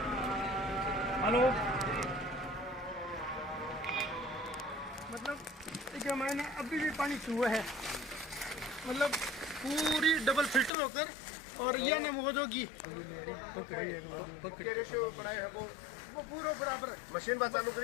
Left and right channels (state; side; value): drops out; right; at 10.7 s